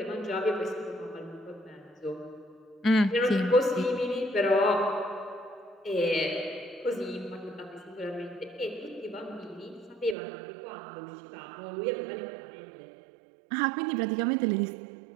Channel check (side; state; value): left; drops out; at 10.2 s